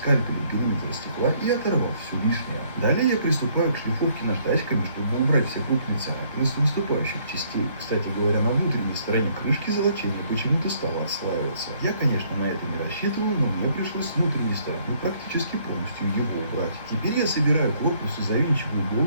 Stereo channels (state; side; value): inverted; both; correlation -0.65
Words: периметр стекла и оторвал всю лишнее. Далее я приступаю к шлифовке наждачками, чтобы убрать все крупные царапины с выступающих частей. Кстати говоря, на внутренней стороне крышки золочение почему-то стало отслаиваться. Я, конечно, на это не рассчитывал, но мне пришлось с внутренней стороны практически полностью его убрать. Теперь я собираю корпус и завинчиваю